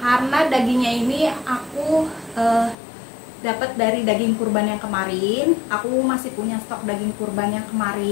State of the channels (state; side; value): drops out; right; at 2.8 s